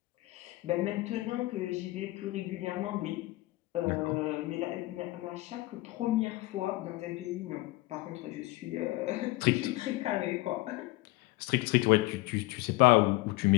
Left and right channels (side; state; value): right; quieter; 20.0 dB